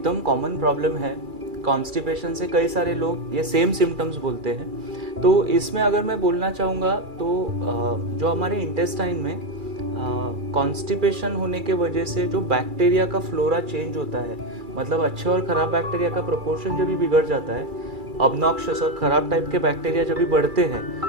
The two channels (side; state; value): left; late; 2.3 ms